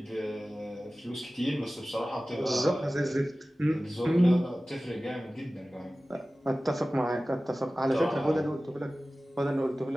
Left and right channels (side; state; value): both; normal; correlation 0.97